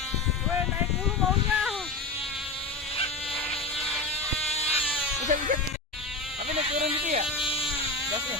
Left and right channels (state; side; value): quieter; right; 3.2 dB